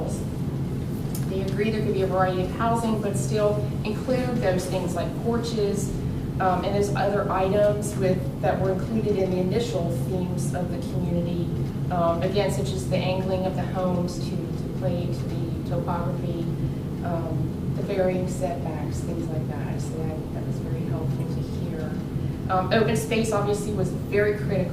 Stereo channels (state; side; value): identical; both; correlation 1.00